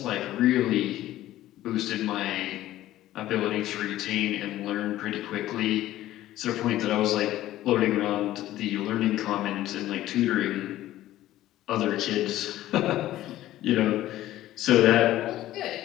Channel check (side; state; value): right; quieter; 14.4 dB